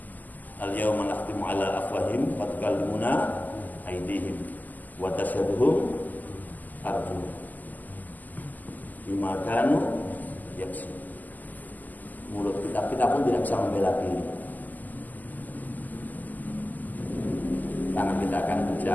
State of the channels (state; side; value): late; right; 0.083 ms